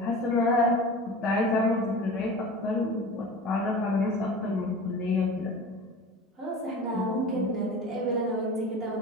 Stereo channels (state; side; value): normal; both; correlation 0.35